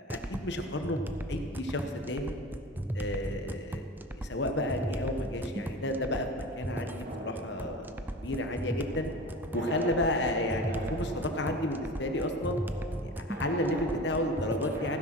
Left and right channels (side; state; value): both; normal; correlation 0.36